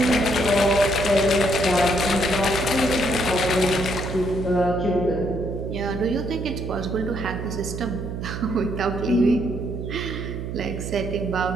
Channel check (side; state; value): right; noise; hum, 6 dB below the sound